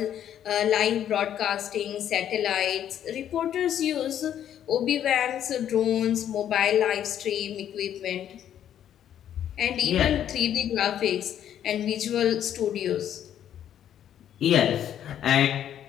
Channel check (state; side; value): quieter; right; 10.3 dB